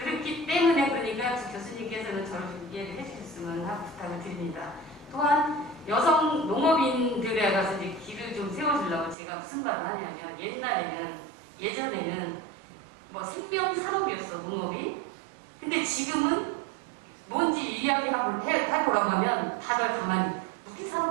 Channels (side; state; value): left; drops out; at 9.2 s